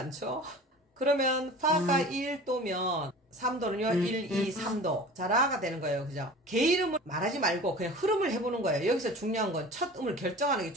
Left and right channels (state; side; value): normal; both; correlation 0.40